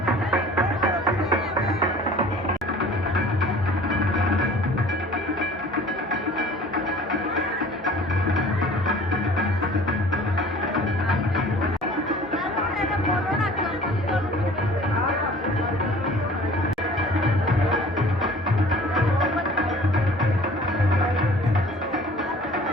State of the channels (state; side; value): normal; both; correlation 0.48